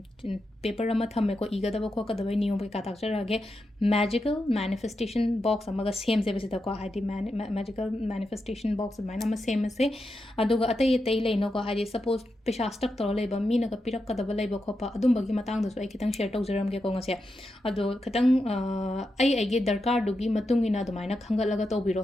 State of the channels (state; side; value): normal; both; correlation 0.87